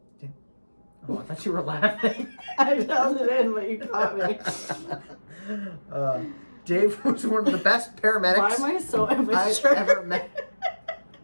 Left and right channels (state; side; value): inverted; both; correlation -1.00